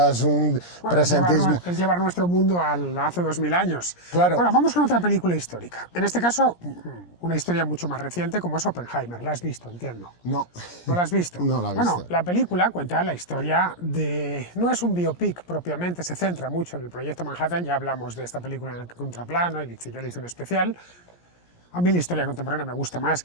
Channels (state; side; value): late; right; 17 ms